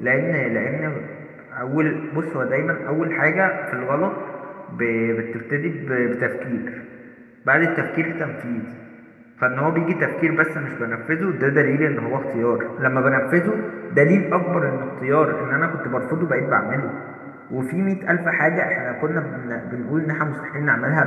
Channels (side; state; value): both; identical; correlation 1.00